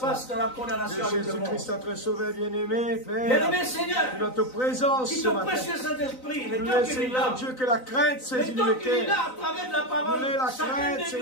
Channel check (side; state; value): right; late; 3.9 ms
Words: dans la de condamnation avec le Jésus-Christ, monde. notre Sauveur bien-aimé, Père. Bien-aimé Seigneur, Notre présence qui ce ton matin. précieux Saint-Esprit, le Nous temps qu'il est Seigneur là, Dieu, que la crainte saisit le le temps qu'il est cœur. là à travers de la parole, Nous la chacun crainte, de nous,